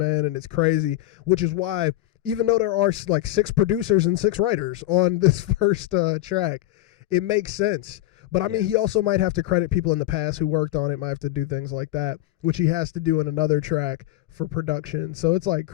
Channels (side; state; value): right; quieter; 15.4 dB